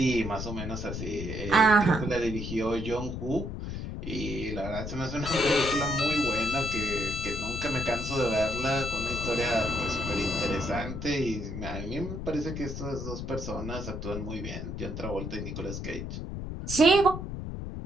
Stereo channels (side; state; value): left; noise; rumble, 6 dB below the sound